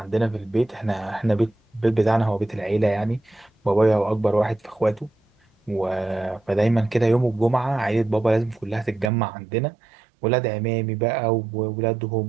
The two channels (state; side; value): drops out; left; at 9.1 s